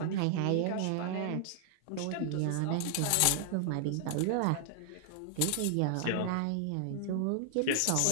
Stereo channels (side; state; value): both; different; correlation -0.01